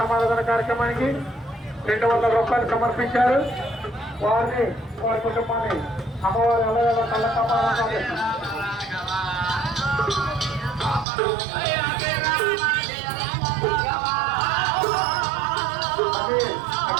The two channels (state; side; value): drops out; left; at 11.1 s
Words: కార్యక్రమానికి 200 రూపాయలు సమర్పించారు. వారిని వారి కుటుంబాన్ని అమ్మవారి ఎల్లవేళ చల్లగా కాపాడమని ప్రార్థిస్తున్నాం.